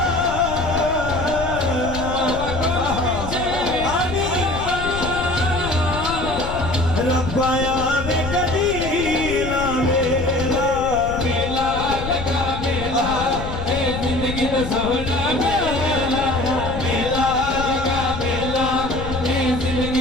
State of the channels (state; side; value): noise; left; rumble, 8 dB below the sound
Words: पाया में कदीला मेला मेला लगा मेला जिंदगी तो सोना मेला मेला लगा मेला